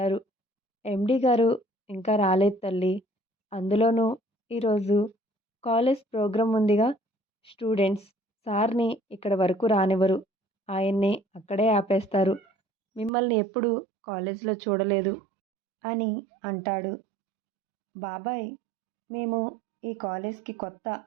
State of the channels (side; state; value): left; drops out; at 13.1 s